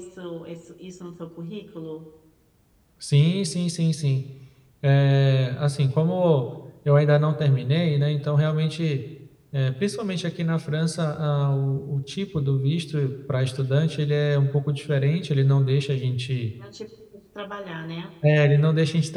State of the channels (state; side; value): identical; both; correlation 1.00